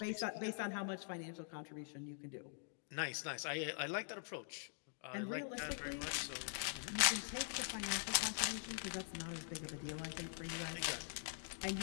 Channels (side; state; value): right; silent; digital silence